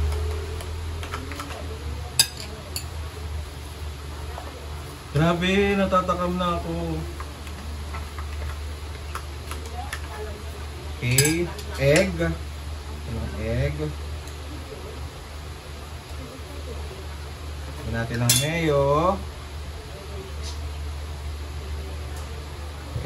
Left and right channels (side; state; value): both; identical; correlation 1.00